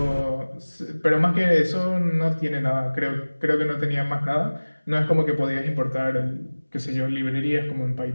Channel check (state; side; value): inverted; both; correlation -1.00